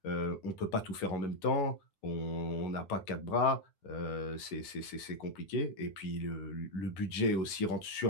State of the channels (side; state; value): right; late; 10 ms